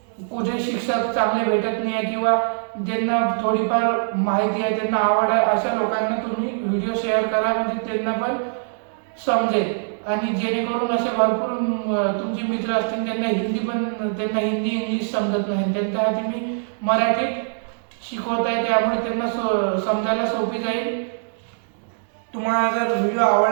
कुठे शिक्षक चांगले भेटत नाही आहे किंवा ज्यांना थोडीफार माहिती आहे त्यांना आवड आहे अशा लोकांना तुम्ही व्हिडिओ शेअर करा, म्हणजे त्यांना पण समजेल आणि जेणेकरून असे भरपूर तुमचे मित्र असतील त्यांना हिंदी इंग्लिश समजत नाही, त्यांच्यासाठी मी मराठीत शिकवत आहे, त्यामुळे त्यांना समजायला सोपी जाईल। तुम्हाला जर व्हिडिओ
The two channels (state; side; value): silent; left; digital silence